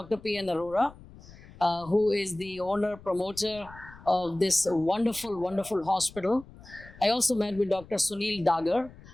P.N. Arora, who is the owner, promoter of this wonderful, wonderful hospital. I also met with Dr. Sunil Dagar.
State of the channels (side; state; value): left; noise; rumble, 20 dB below the sound